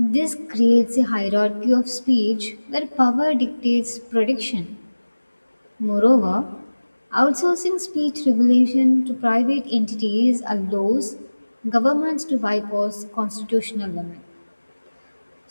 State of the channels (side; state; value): both; inverted; correlation -1.00